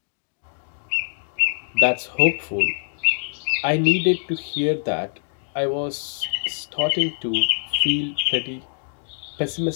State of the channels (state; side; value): silent; right; digital silence